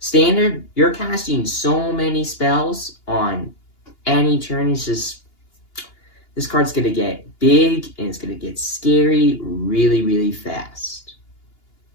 you're casting so many spells on any turn. It's just, this card's going to get big and it's going to get scary really, really fast.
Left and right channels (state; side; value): late; right; 2.8 ms